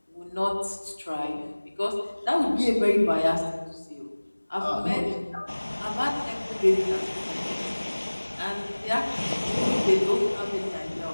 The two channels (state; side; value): inverted; both; correlation -1.00